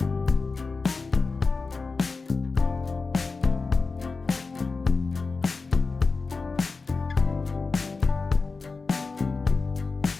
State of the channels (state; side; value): quieter; right; 4.2 dB